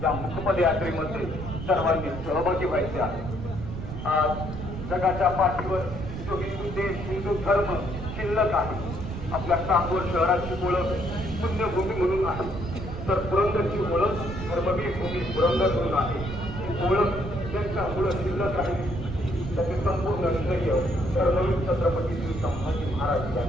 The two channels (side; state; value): right; noise; rumble, 7 dB below the sound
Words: या मुकपद यात्रेमध्ये सर्वांनी सहभागी व्हायचे आहे. आज जगाच्या पाठीवर जो हिंदू देश, हिंदू धर्म शिल्लक आहे, आपल्या सांगोल शहराची ओळख पुण्यभूमी म्हणून आहे, तर पुरंदरची ओळख धर्मवीर भूमी पुरंदर म्हणून आहे. ही ओळख ज्यांच्यामुळे शिल्लक राहिली त्याचे संपूर्ण श्रेय धर्मवीर छत्रपती श्री संभाजी महाराज